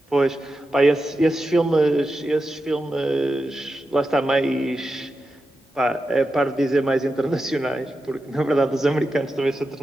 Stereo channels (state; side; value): normal; both; correlation 0.90